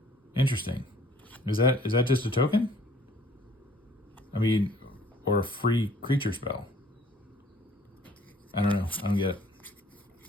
Interesting. Is that just a token? I mean, or a free creature spell. I don't know. I don't get it.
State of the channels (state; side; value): normal; both; correlation 0.57